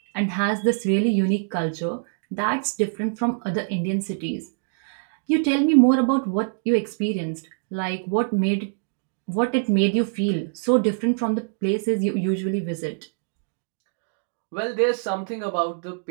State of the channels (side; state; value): left; silent; digital silence